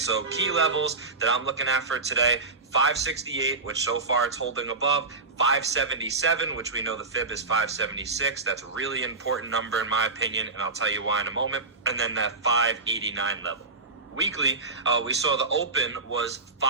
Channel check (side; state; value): left; quieter; 3.7 dB